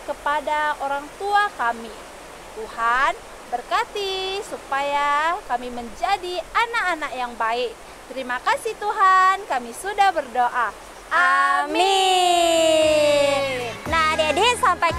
kepada orang tua kami. Tuhan, berkati supaya kami menjadi anak-anak yang baik. Terima kasih Tuhan, kami sudah berdoa. Amin. Nah, adik-adik, sampai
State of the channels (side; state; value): both; identical; correlation 1.00